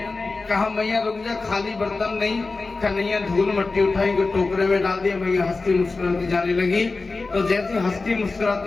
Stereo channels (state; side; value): quieter; right; 3.8 dB